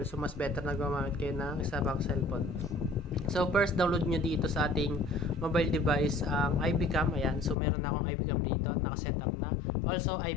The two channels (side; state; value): right; drops out; at 7.6 s